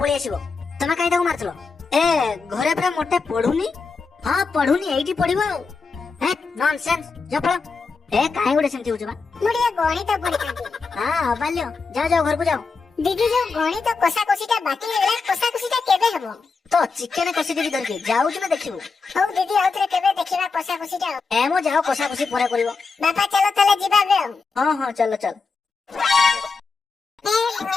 पळी आसीबो तमे काई ताको मारथलो ए घरे पूरा मोटे पढुनी ହଁ ପଢୁନି ଏଇଠି ପଢିବ ଆଉ ହେ ନନସେନ୍ସ ଜଫଳ ଏ କାହିଁ ଗୋଟେ ସେମିତି ହଉଛୁ ବା ମୁଁ ଟିକେ ଗଣିତ ପଢିଥାନ୍ତି। ହଁ ଅବାଲ୍ୟ ଯାଅ ଯାଅ ଘରକୁ ଯାଅ ଦିଦି ଯୋଉ ଗଣିତ କଷାକଷିଟା ବାକି ହେଇଗଲା କଷାକଷିଟା କେବେ ହବ? ତ ଚିକେନ କଷି ଦେବି ଧରିକି ଯାଉଛୁ ନା ଦେଖିବୁ ହଉ ଦିଦି ଆଉଥରେ କେବେ ଦେଖିବା କଷାକଷିଟା ଆଉ। ଏ ମୋ ଯାଅ କଷା କଷି ପରେ କରିବ ବାପା ଚାଲ ତାହେଲେ ଯିବା ଏବେ ଆଉ। ହଁ ହଁ ଚାଲ ଚାଲ ହେ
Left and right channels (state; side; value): quieter; right; 4.6 dB